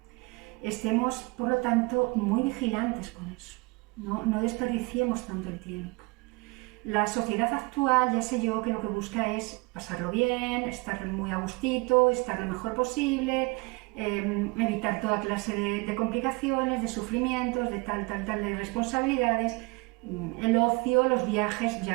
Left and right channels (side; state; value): left; quieter; 26.8 dB